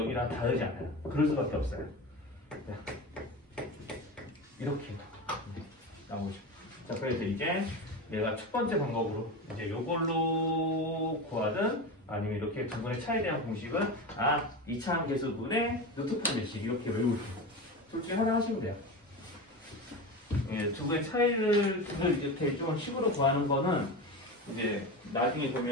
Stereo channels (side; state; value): both; normal; correlation 0.25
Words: 다르지 않아요. 그럴 수밖에 없어요. 자, 이렇게 나오죠. 자, 그래서 이제 내가 첫 번째 방법으로 이제 요걸로 구하든 아니면 이렇게 두 분의 차이에 대한 공식은 이차함 계수분의 루트판 몇식 이렇게 외우세요. 둘 중에 하나 하시면 돼요. 예, 두 분의 차이를 이렇게 좀 식으로 구하는 거는 이제 나중에